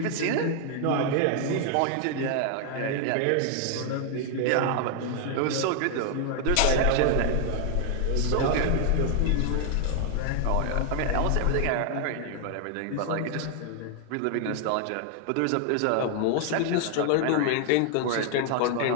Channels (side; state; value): both; different; correlation 0.00